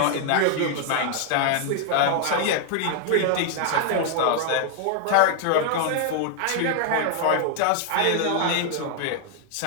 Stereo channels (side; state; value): both; different; correlation 0.00